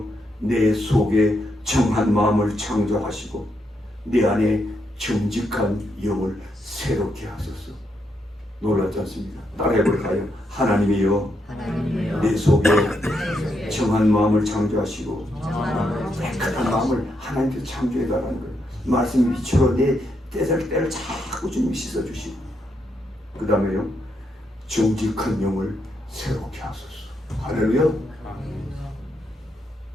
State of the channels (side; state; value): both; normal; correlation 0.79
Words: 내 속에 정한 마음을 창조하시고 내 안에 정직한 영을 새롭게 하소서. 놀랍지 않습니까? 따라해볼까요? 하나님이여, 내 속에 정한 마음을 창조하시고 깨끗한 마음을 하나님께서 창조해달라는 거예요. 말씀 빛으로 내 때를 자꾸 주님이 씻어주시고, 그 다음에요, 정직한 영을 새롭게 하소서. 할렐루야.